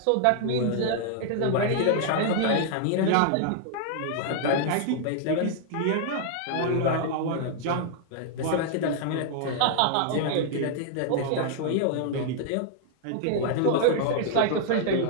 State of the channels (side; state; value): both; different; correlation 0.00